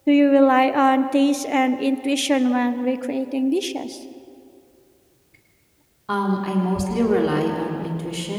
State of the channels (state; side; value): identical; both; correlation 1.00